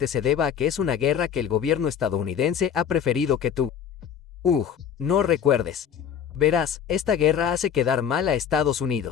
se deba a que es una guerra que el gobierno estadounidense ha preferido que tú no recuerdes. Verás, esta guerra hace quedar mal a Estados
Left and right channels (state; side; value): quieter; right; 8.3 dB